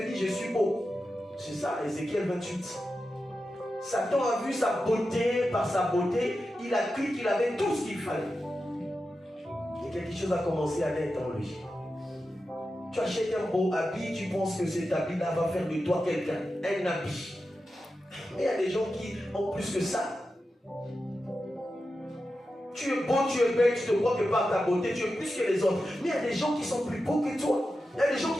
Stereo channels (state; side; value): normal; both; correlation 0.91